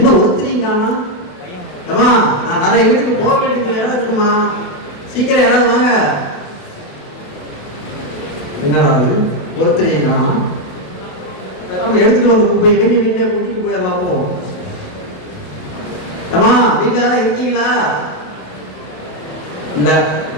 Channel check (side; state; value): right; late; 28 ms